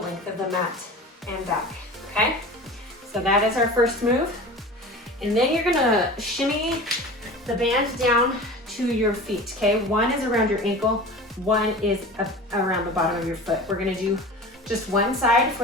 of the mat and back, okay? So that is our first move. And then you're gonna shimmy the band down to your feet, okay? 1 is around your ankle, 1 is around the bottom of your foot. We're gonna do just 1 side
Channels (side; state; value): both; normal; correlation 0.36